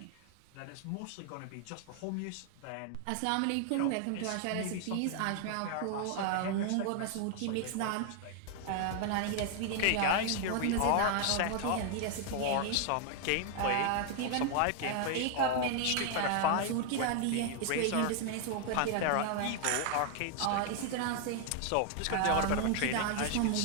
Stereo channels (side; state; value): both; different; correlation 0.00